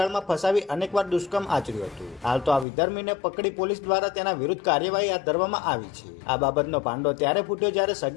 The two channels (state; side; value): drops out; right; at 2.7 s